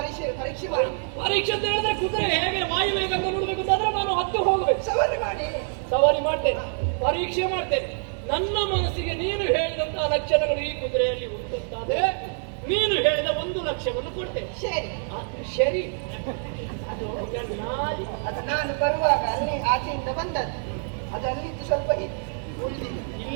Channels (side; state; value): left; silent; 61 dB below the other